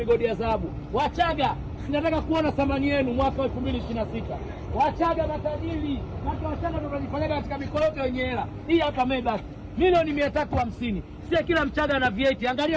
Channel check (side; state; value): both; identical; correlation 1.00